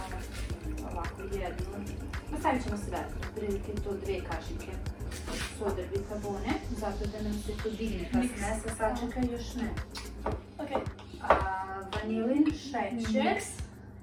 ovako jednu. Stavit ćemo sve, prilike to 2 kašike sodar bikarbone, zato da nam se to digne pa smesa, sačekaj još ne. Okej. Vanilin šećer.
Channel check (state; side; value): identical; both; correlation 1.00